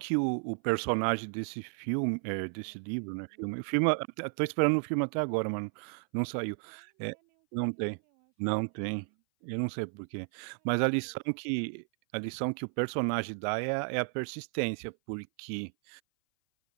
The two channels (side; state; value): left; silent; 56 dB below the other